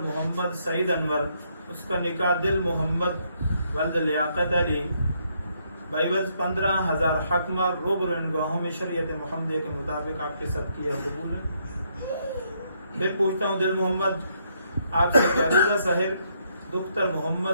मोहम्मद सईद अनवर, उसका निकाह दिल मोहम्मद वल्द लियाकत अली बाइवज 15,000 हकमार रोबरो इन गवाहों में शरीयत मुहम्मदिया के मुताबिक आपके साथ किया कबूल है। फिर पूछता हूँ दिल मोहम्मद आपसे अलीज़ा साहिर दुख्तर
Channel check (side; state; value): both; inverted; correlation -0.74